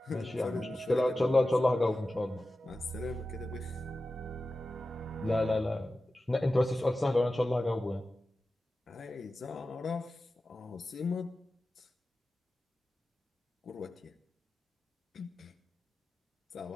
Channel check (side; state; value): both; normal; correlation 0.94